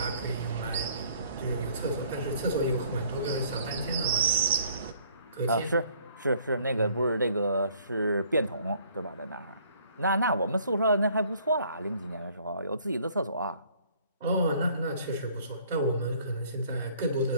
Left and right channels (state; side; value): inverted; both; correlation -0.60